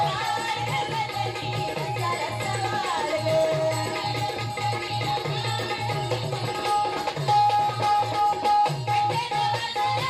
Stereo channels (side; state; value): both; identical; correlation 1.00